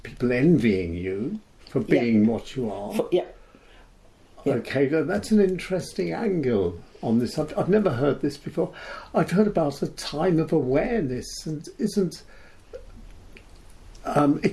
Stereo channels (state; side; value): identical; both; correlation 1.00